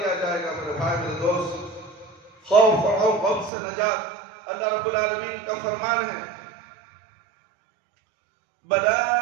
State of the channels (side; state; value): left; drops out; at 3.5 s